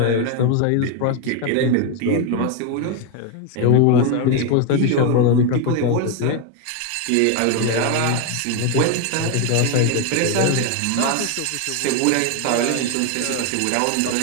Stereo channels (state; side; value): different; both; correlation 0.01